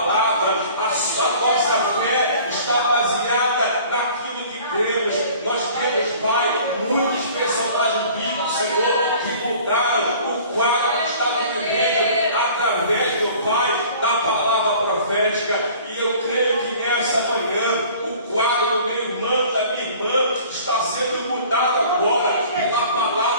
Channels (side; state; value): both; inverted; correlation -0.48